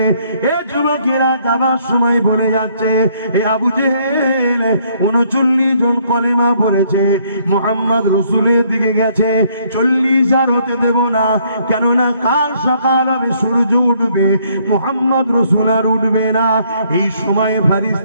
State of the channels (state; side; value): inverted; both; correlation -0.67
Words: এ যুবকেরা যাবার সময় বলে যাচ্ছে, এ আবু জেহেল 39 জন কলেমা পড়েছে, মুহাম্মদ রাসূলের দিকে গেছে, 40 আর হতে দেব না। কেননা কাল সকাল হবে, সূর্য উঠবে, মুহাম্মদ রাসূল আর উঠবে না। এই সময়